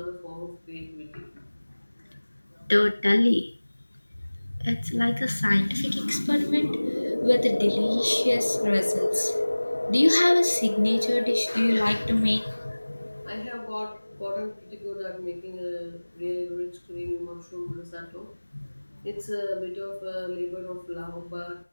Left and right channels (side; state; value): both; inverted; correlation -1.00